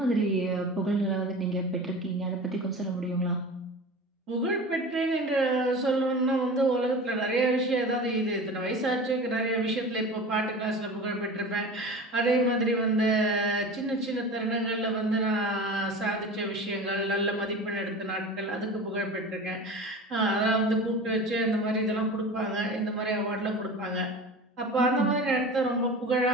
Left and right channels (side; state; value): both; normal; correlation 0.34